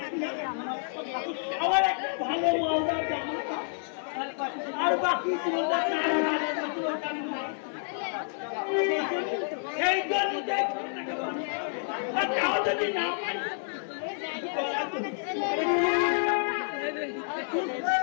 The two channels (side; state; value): right; silent; digital silence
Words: আমার একটা ভালো মালদার জামা আর বাকি সেই জন্য যদি না পারি